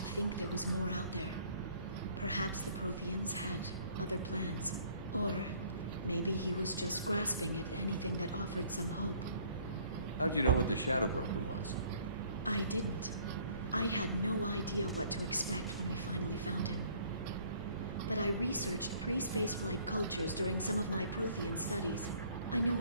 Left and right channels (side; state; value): both; inverted; correlation -0.58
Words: there was more out there. Perhaps the Protheans had other plans. Or maybe he was just grasping at anything that offered some hope. How'd you know what the Shadow Broker was? I didn't. I had no idea what to expect when we finally found him. But I researched pre-spaceflight cultures during some of my Prothean studies. I know